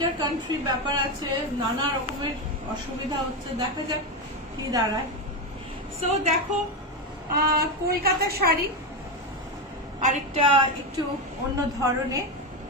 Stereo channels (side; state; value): both; normal; correlation 0.12